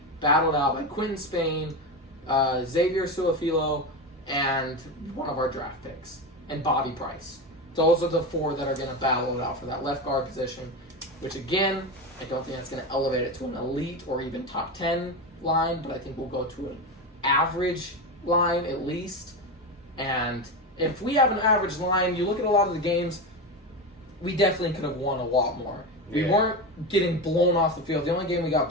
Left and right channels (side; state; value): both; normal; correlation 0.19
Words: battled out by Quentin Spain, Xavier Suafilo, and one of our draft picks, and Bobby Price. Those are the 4 that are going to battle it out for that left guard position, which again, I don't think that's going to elevate it to an elite or even top 10 line, but I think we'll go to an average line at least. And if we have an average line, you look at a lot of the games, we definitely could have won a lot more. We weren't getting blown off the field. The only game we got